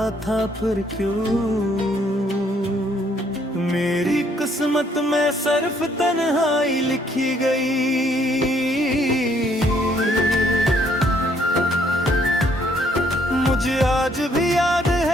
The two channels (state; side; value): normal; both; correlation 0.67